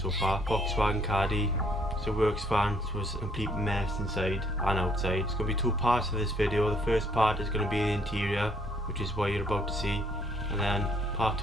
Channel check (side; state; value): both; normal; correlation 0.65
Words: far. Volkswagen Caddy, it's a works van, so it's a complete mess inside and outside. It's going to be two parts of this video. The first part is going to be the interior, which is what you're about to see, and then part